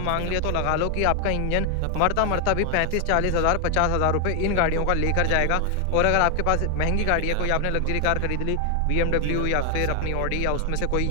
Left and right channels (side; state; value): both; different; correlation 0.00